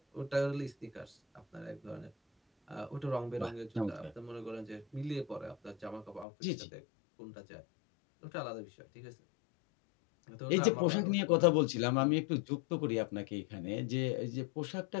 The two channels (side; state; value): right; drops out; at 6.2 s